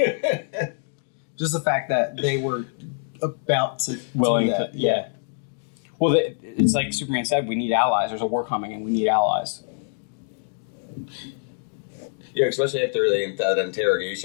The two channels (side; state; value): right; silent; 62 dB below the other